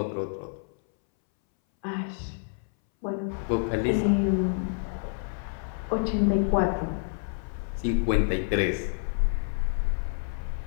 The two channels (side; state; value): right; silent; 59 dB below the other